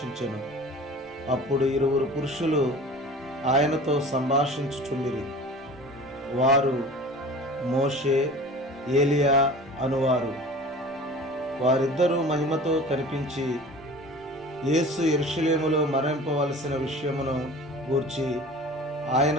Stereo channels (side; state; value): both; normal; correlation 0.41